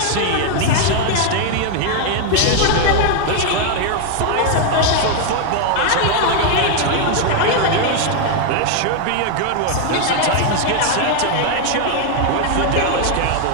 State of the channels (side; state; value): both; different; correlation 0.00